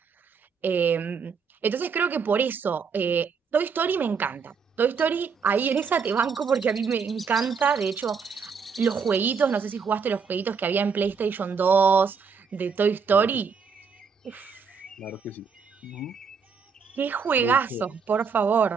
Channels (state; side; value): quieter; left; 5.8 dB